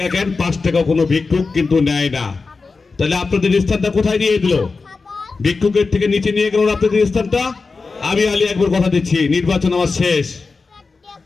কেন 5 টাকা কোনো ভিক্ষুক কিন্তু নেয় না। তাহলে আপনাদের স্থানটা কোথায় নিয়ে দিল? ভিক্ষুকের থেকে নিচে নিয়ে গেল আপনাদের স্থানটা। আমি আলী আকবর কথা দিচ্ছি, নির্বাচন আমার শেষ,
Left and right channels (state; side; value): quieter; right; 4.3 dB